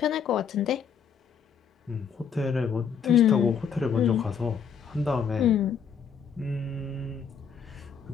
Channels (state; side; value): quieter; right; 6.9 dB